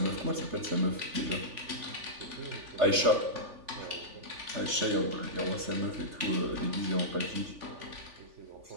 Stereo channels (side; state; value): left; late; 3.5 ms